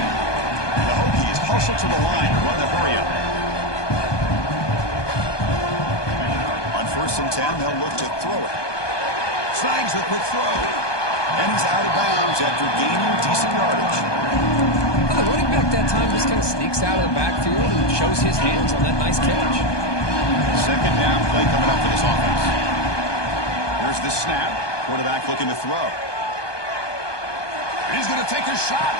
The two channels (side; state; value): right; late; 1.2 ms